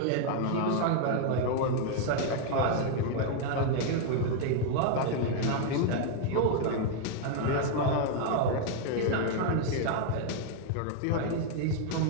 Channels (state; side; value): different; both; correlation 0.00